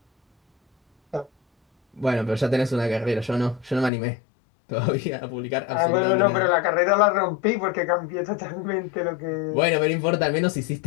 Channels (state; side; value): drops out; right; at 3.9 s